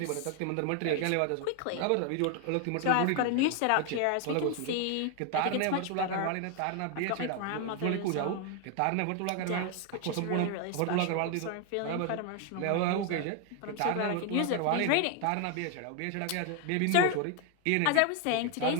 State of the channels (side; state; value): both; different; correlation 0.01